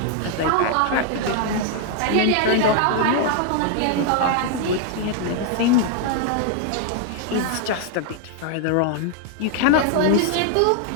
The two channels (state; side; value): different; both; correlation 0.00